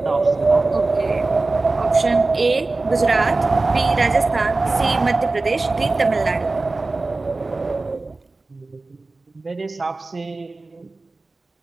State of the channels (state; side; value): quieter; left; 3.4 dB